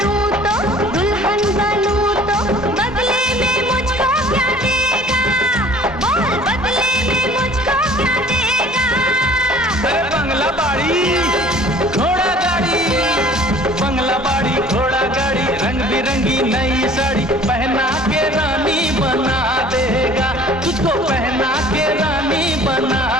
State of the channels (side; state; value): both; normal; correlation 0.50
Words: तो दुल्हन बनूं तो, बदले में मुझको क्या देगा, बोल बदले में मुझको क्या देगा। अरे बंगला बाड़ी घोड़ा गाड़ी, बंगला बाड़ी घोड़ा गाड़ी, रंग बिरंगी नई साड़ी पहना के रानी बना देगा, तुझको पहना के रानी बना